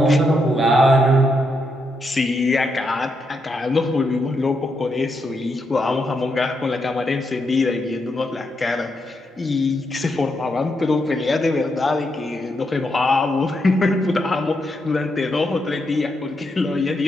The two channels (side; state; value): both; normal; correlation 0.81